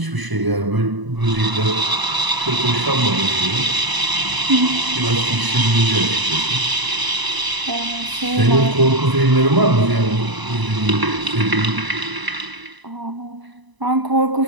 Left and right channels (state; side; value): late; left; 1.0 ms